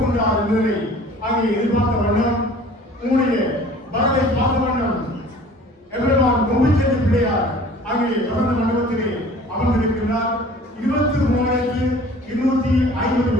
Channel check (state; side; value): normal; both; correlation 0.48